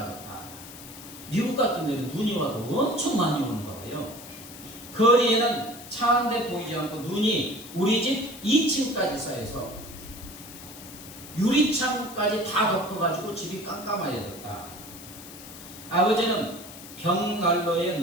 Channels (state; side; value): noise; left; hiss, 15 dB below the sound